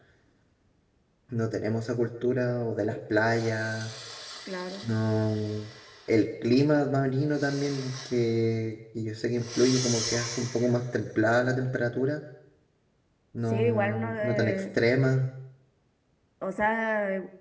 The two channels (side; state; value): both; identical; correlation 1.00